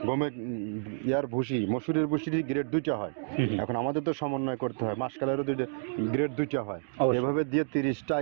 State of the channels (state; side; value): silent; left; digital silence